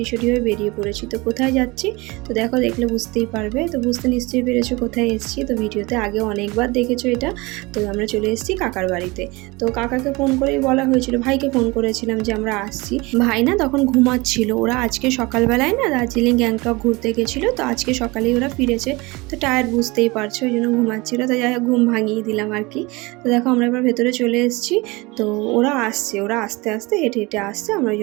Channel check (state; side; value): quieter; left; 23.9 dB